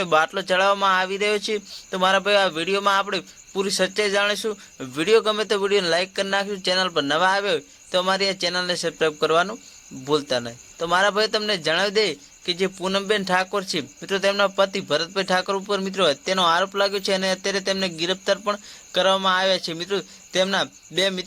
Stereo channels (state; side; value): identical; both; correlation 1.00